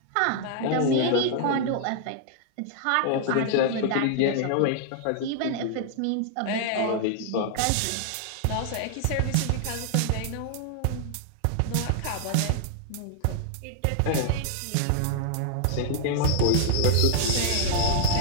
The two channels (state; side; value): different; both; correlation 0.00